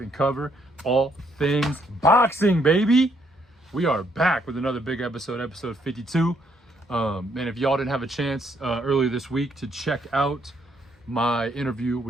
and cover all things boxing, baby. We are back with another big episode, episode 52. And if y'all didn't have a chance earlier this week to check out my interview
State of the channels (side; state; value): both; normal; correlation 0.71